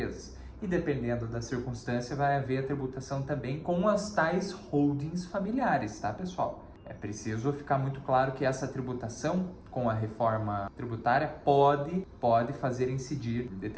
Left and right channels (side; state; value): both; identical; correlation 1.00